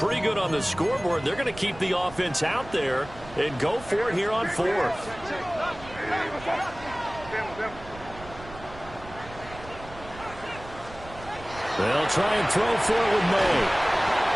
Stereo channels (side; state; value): right; noise; rumble, 17 dB below the sound